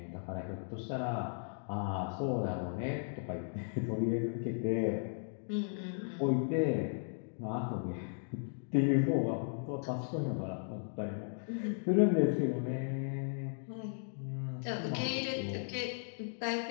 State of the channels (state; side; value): silent; right; digital silence